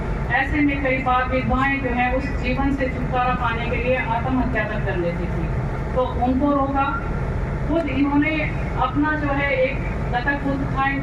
ऐसे में कई बार विधवाएं जो है उस जीवन से छुटकारा पाने के लिए आत्महत्या तक कर लेती थी, तो उनको रोका। खुद इन्होंने अपना जो है एक दत्तक पुत्र था,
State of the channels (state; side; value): identical; both; correlation 1.00